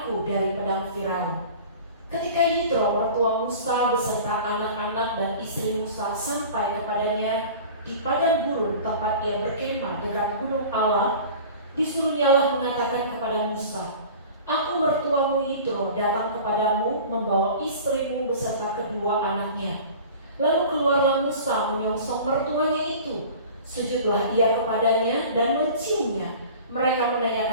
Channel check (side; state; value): both; inverted; correlation -0.41